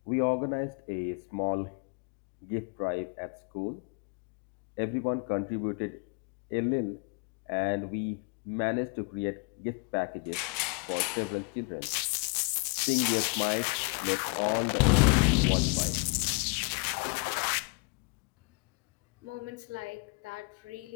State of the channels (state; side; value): quieter; right; 33.6 dB